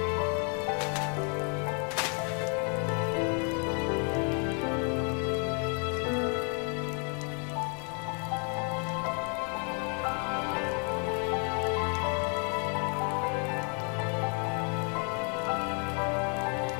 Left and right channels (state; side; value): quieter; right; 39.9 dB